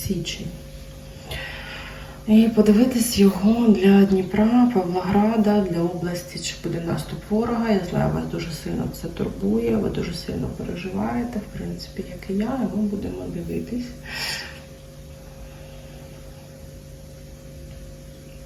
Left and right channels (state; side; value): identical; both; correlation 1.00